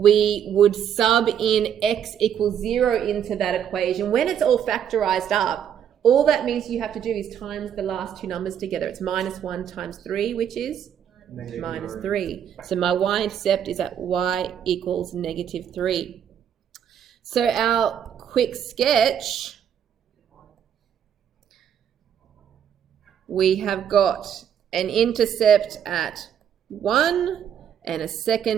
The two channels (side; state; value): left; quieter; 8.9 dB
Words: would sub in x equals 0 into that equation. When it's all factorized up, all that means you have to do is times the last two numbers together. It's -1 times 3, which is -3. So my y-intercept is at y equals -3. So our quick sketch, we have got an intercept at 1 and a